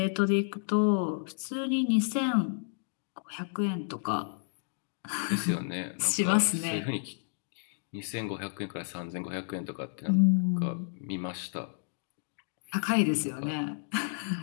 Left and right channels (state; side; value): silent; right; digital silence